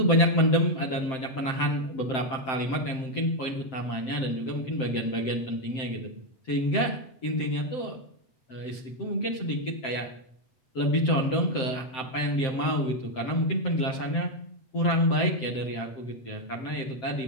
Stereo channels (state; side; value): late; right; 7.7 ms